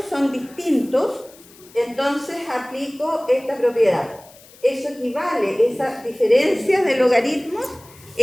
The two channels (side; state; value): left; noise; hiss, 24 dB below the sound